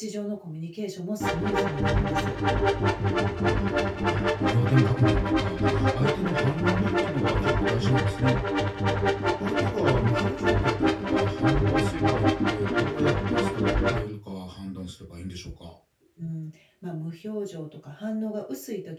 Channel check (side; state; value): both; identical; correlation 1.00